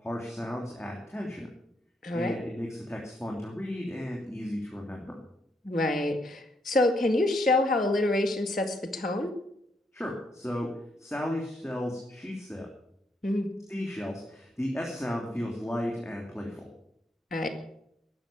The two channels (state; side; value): normal; both; correlation 0.76